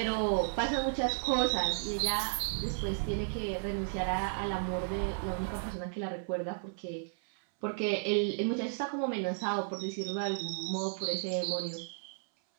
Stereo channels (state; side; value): silent; left; 55 dB below the other